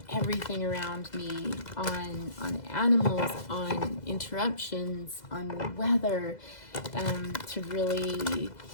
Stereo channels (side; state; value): right; late; 2.0 ms